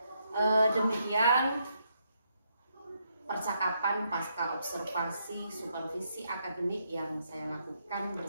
demikian percakapan pasca observasi supervisi akademik yang saya lakukan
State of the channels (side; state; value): both; inverted; correlation -0.77